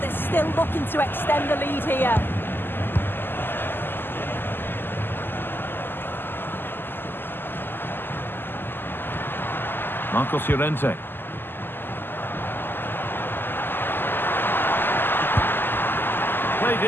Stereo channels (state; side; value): late; right; 0.097 ms